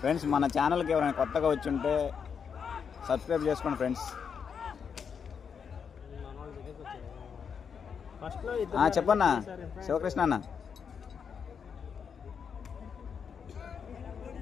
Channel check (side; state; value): right; quieter; 6.7 dB